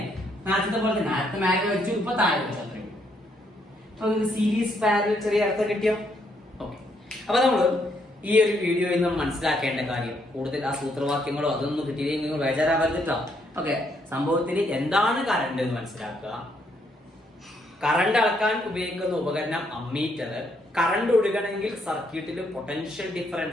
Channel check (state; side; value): normal; both; correlation 0.73